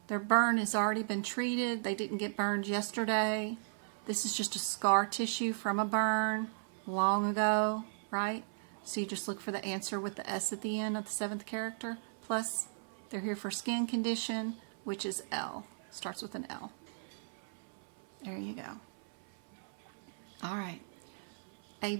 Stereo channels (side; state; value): left; silent; 54 dB below the other